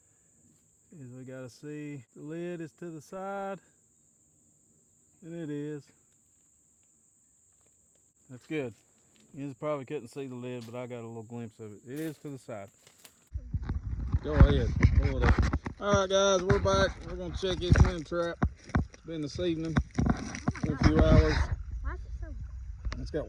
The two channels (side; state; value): both; identical; correlation 1.00